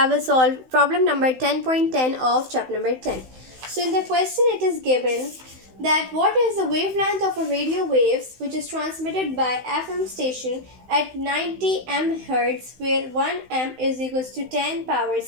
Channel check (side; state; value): left; late; 16 ms